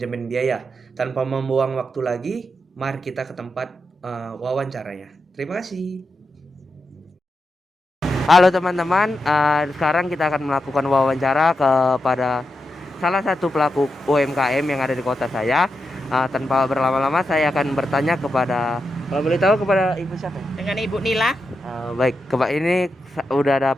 biaya. Tanpa membuang waktu lagi, mari kita ke tempat wawancaranya. Terima kasih. Halo teman-teman, sekarang kita akan melakukan wawancara kepada salah satu pelaku UMKM yang ada di kota saya. Tanpa berlama-lama, saya akan bertanya kepada, kalau boleh tahu, kepada Ibu siapa? Dengan Ibu Nila. Baik, ini udah ada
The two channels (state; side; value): normal; both; correlation 0.87